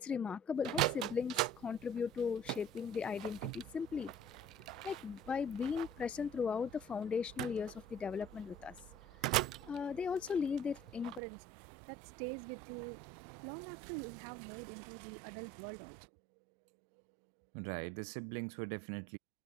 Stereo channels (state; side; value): drops out; left; at 11.2 s